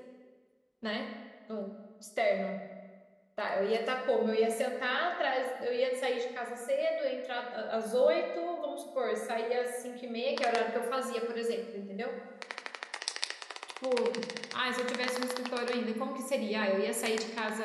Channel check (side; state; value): both; identical; correlation 1.00